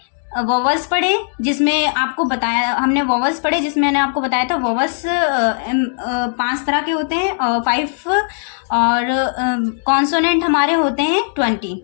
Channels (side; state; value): right; silent; digital silence